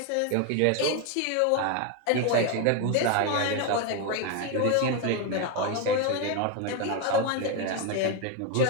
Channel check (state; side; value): different; both; correlation 0.02